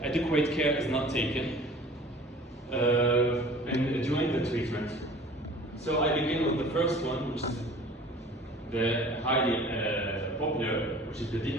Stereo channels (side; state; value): both; normal; correlation 0.46